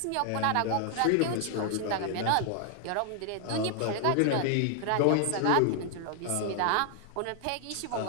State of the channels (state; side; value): different; both; correlation 0.00